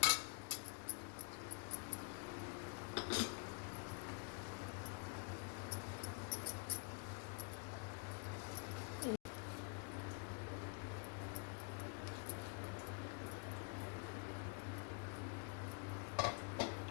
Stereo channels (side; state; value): right; quieter; 38.8 dB